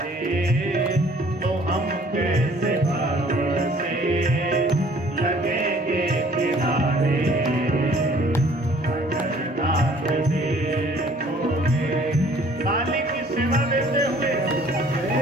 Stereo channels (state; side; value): normal; both; correlation 0.56